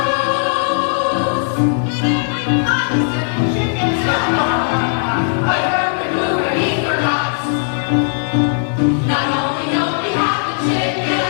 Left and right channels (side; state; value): right; silent; 68 dB below the other